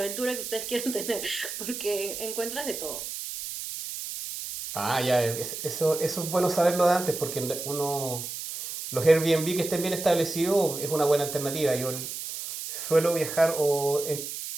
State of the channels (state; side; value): noise; right; hiss, 7 dB below the sound